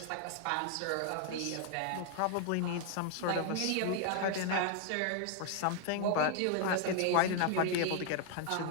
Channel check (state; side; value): different; both; correlation 0.00